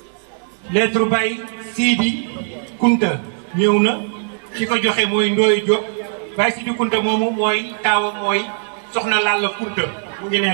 lettre Baye Sidi Kunta ñëw na ki ko joxe mooy Ndoye Diop Baye Sidi Kunta moomu mooy taawam mooy Soxna Lalla Kunta mu ngi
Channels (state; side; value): silent; left; 63 dB below the other